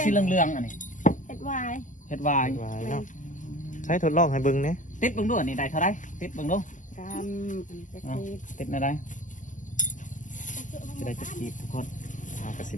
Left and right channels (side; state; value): right; late; 0.37 ms